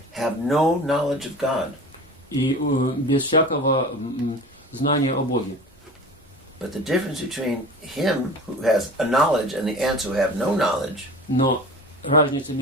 have no knowledge of God. и без всякого знания о Боге. But the difference between him who has a knowledge and the ants who have no knowledge Но разница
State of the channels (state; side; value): normal; both; correlation 0.37